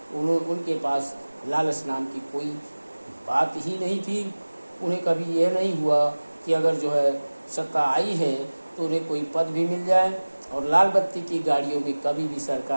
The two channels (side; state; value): both; inverted; correlation -1.00